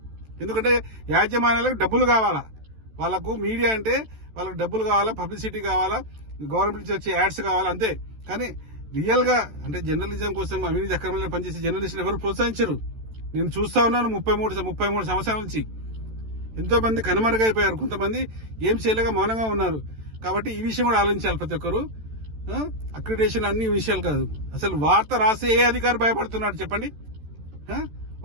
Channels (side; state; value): left; late; 14 ms